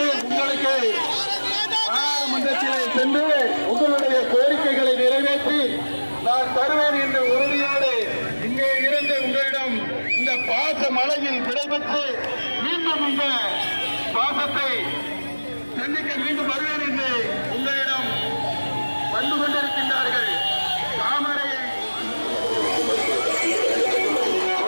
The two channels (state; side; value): inverted; both; correlation -1.00